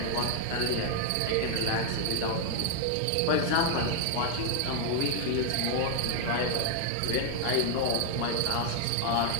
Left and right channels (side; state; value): both; different; correlation 0.00